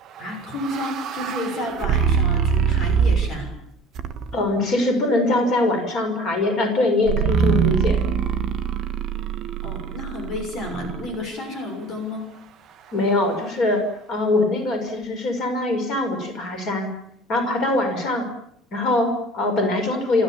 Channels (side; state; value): both; normal; correlation 0.45